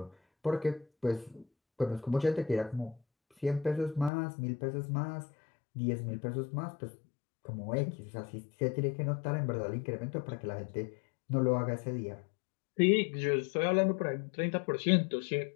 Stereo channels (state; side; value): drops out; right; at 4.1 s